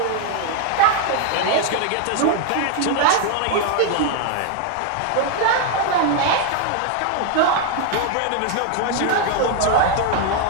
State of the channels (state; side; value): different; both; correlation 0.01